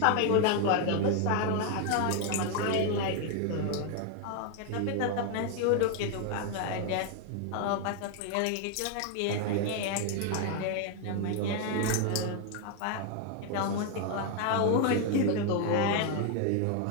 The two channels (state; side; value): different; both; correlation 0.01